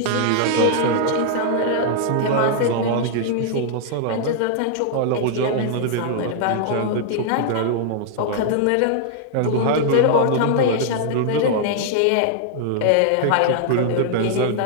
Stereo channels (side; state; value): both; different; correlation -0.01